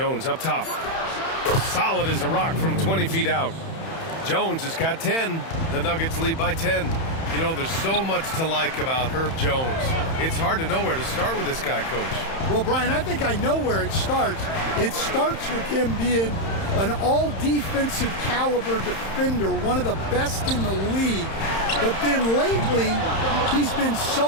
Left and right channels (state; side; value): late; right; 31 ms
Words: up top. Solid as a rock from 20 feet out. Jones has got 10. The Nuggets lead by 10. You know, there's so much to like about Herb Jones. It's hard to know where to start with this guy, Coach. Well, Brian, I think I know where it starts. It starts with him being an all-defensive caliber defender, one of the best in the league. But then lately, he's been